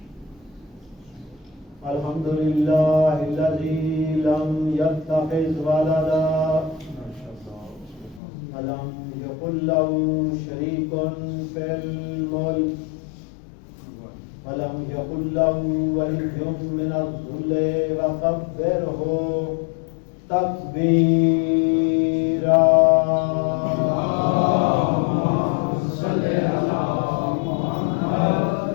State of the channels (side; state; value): right; drops out; at 8.2 s